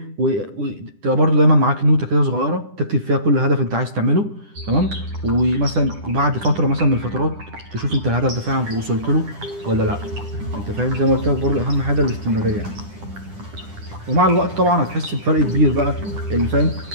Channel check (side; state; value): left; late; 10 ms